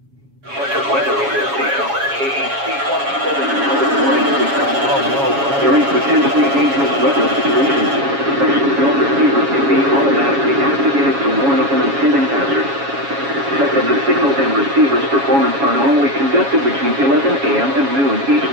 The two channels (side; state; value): left; late; 7.2 ms